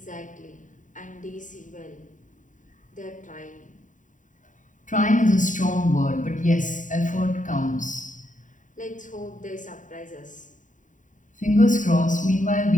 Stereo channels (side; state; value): right; late; 0.37 ms